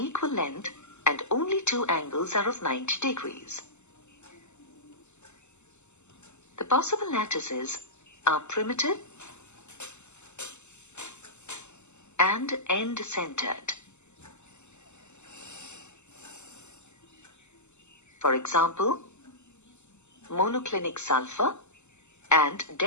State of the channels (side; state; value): right; late; 0.83 ms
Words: length and only 2 angles are of 90 degrees. The possible lattices are primitive and end-centered. For example, monoclinic sulfur and